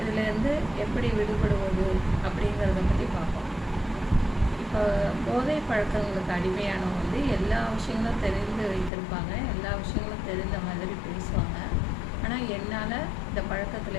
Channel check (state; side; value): drops out; right; at 8.9 s